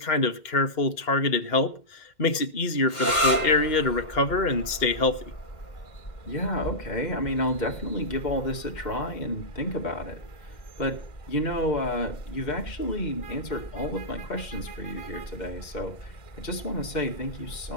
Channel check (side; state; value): right; late; 2.1 ms